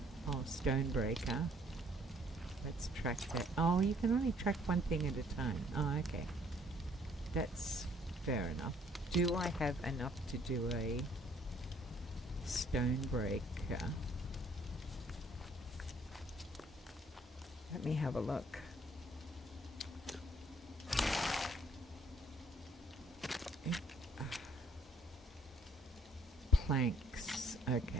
Oh, stone breaker. Let's track that. Oh, you can only track one thing at a time. Oh, okay. That's fair enough. Do I have enough to do a stone breaker? Let me have a look. Planks.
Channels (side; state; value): both; normal; correlation 0.64